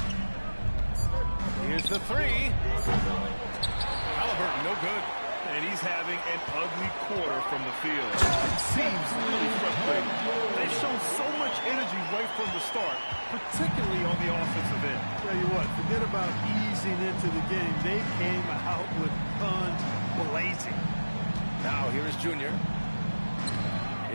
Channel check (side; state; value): both; inverted; correlation -1.00